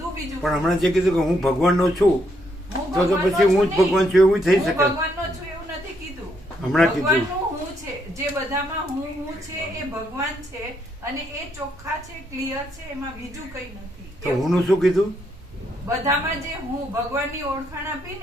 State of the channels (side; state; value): both; normal; correlation 0.75